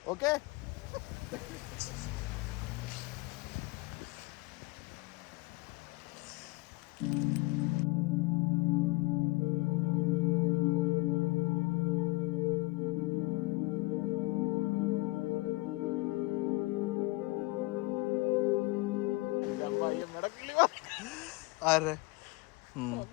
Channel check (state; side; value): quieter; right; 23.1 dB